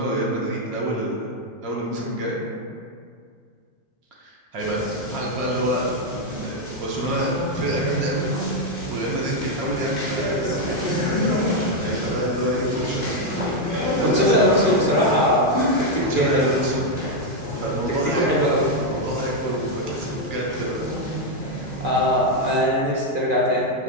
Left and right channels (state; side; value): late; left; 2.5 ms